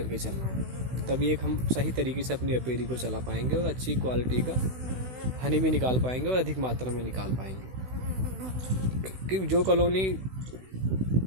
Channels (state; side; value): late; left; 16 ms